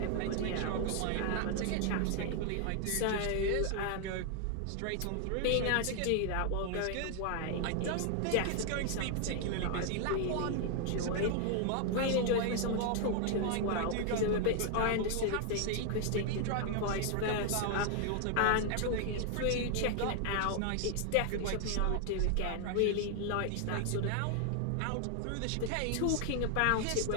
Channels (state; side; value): different; both; correlation 0.00